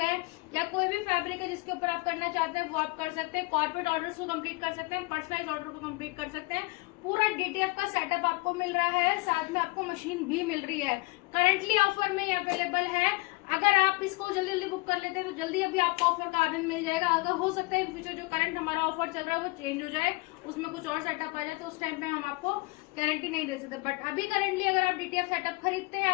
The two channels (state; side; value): quieter; right; 24.3 dB